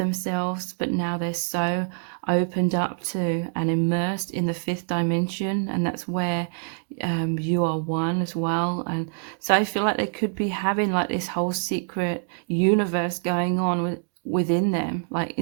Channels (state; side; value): silent; left; digital silence